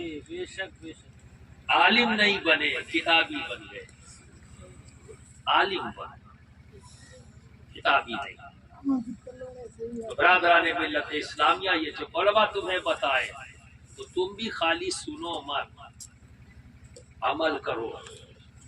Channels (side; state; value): both; identical; correlation 1.00